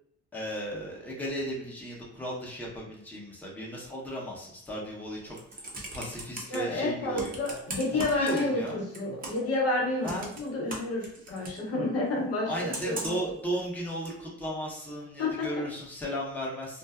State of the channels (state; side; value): normal; both; correlation 0.25